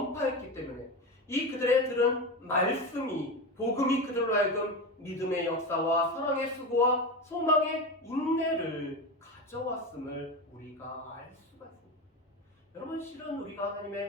때문에 이 그들의 들은 말씀이 복음이 그들로 하여금 믿음의 역사와 사랑의 수고와 소망의 인내를 가져왔음을 우리가 알 수가 있습니다. 여러분 실은 우리가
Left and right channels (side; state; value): both; normal; correlation 0.21